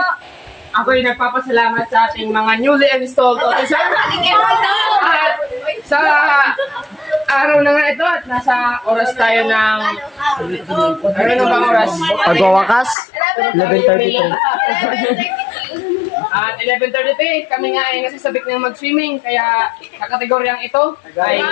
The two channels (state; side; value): drops out; right; at 13.0 s